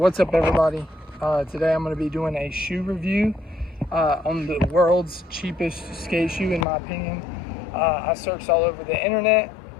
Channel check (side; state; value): right; drops out; at 6.7 s